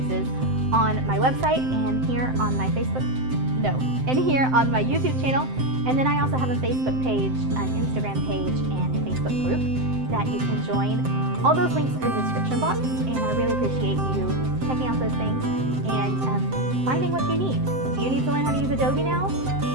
on my website and here on my here on my YouTube channel. And then I also have a Facebook page, an Instagram page, and a Facebook group that you can join. All those links are in the description box, and I really appreciate you checking out those things and finding what you need. Do you need to learn how to use Adobe now?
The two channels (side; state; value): left; late; 7.7 ms